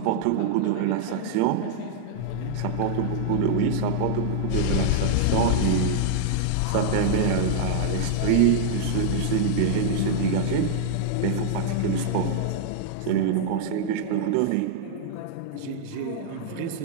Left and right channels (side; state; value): both; different; correlation -0.01